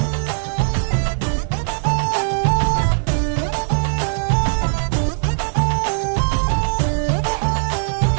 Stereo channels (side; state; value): left; silent; 66 dB below the other